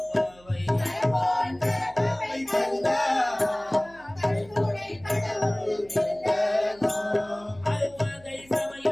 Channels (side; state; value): right; noise; hum, 26 dB below the sound